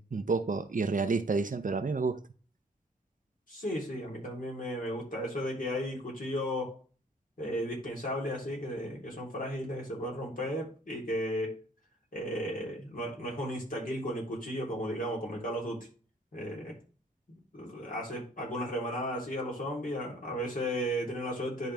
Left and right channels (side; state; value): both; normal; correlation 0.56